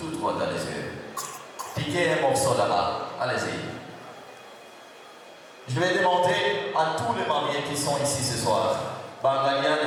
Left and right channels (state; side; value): identical; both; correlation 1.00